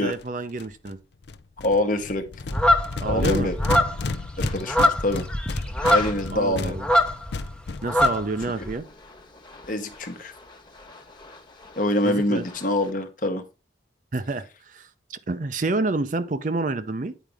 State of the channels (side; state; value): both; normal; correlation 0.57